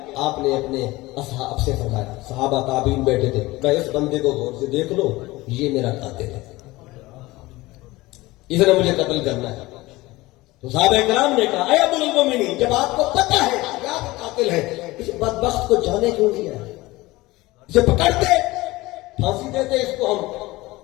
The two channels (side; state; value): right; quieter; 20.0 dB